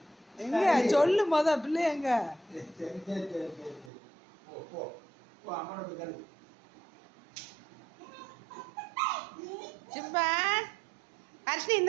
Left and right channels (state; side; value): drops out; left; at 3.9 s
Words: எங்க சொல்லு பிள்ளை எங்க? சிம்பா ஹர்ஷினி